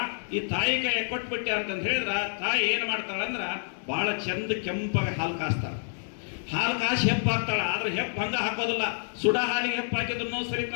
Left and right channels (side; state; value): right; silent; digital silence